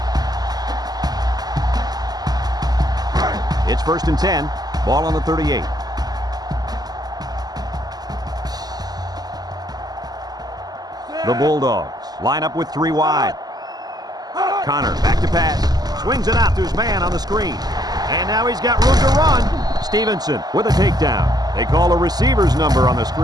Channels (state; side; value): late; left; 0.19 ms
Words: It's 1st and 10. Ball on the 38. The Bulldogs line up with 3 wide. Connor back to pass. Swings it out to his man on the screen. And now he's got room to run. Stevenson with a takedown. They call a receiver's number on the